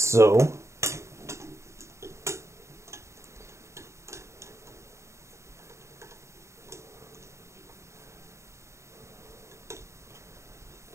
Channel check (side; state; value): left; late; 0.14 ms